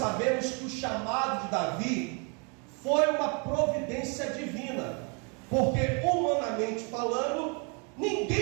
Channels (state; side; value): quieter; left; 35.3 dB